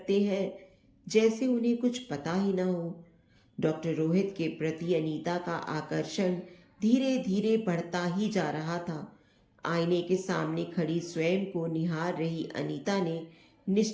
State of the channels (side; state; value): both; identical; correlation 1.00